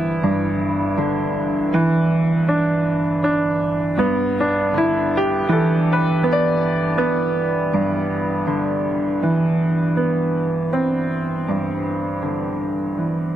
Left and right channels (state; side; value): noise; left; hum, 22 dB below the sound